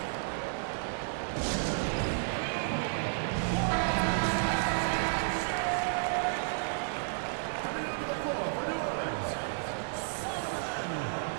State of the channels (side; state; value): left; silent; digital silence